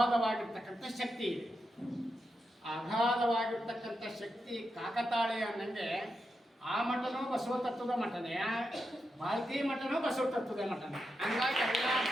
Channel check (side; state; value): both; normal; correlation 0.87